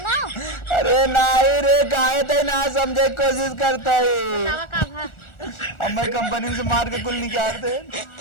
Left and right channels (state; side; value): late; right; 1.4 ms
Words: अरे नहीं रे काहे ते ना समझे कोशिश करता है ना का भा अम्मा कंपनी से मार के कुल निकाल दे